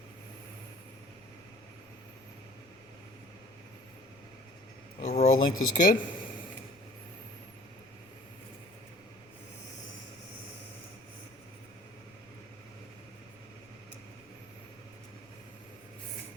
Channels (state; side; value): noise; left; rumble, 27 dB below the sound